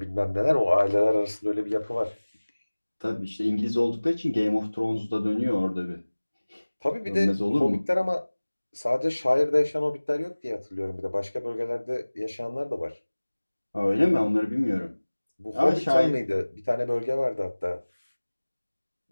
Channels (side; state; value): both; inverted; correlation -1.00